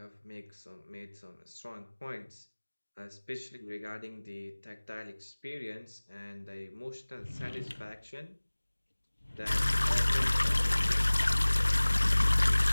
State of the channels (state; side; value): inverted; both; correlation -1.00